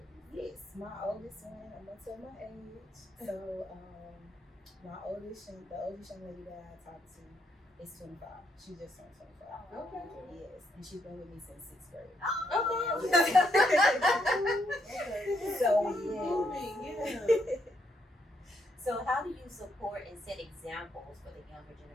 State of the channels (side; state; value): both; normal; correlation 0.76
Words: Yes, my oldest one, I'm gonna tell my age. So the oldest young lady that I talked to is 25. She just turned 25. Okay. Yes, and she's been with me since 6th grade. Okay. So yeah. So how do you support and set examples for the younger